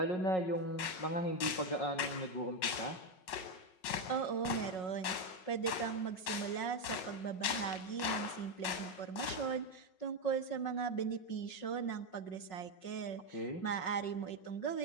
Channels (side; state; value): right; late; 5.4 ms